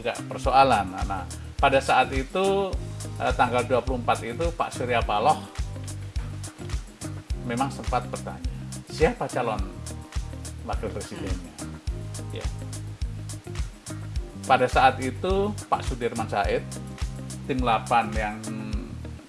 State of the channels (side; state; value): both; identical; correlation 1.00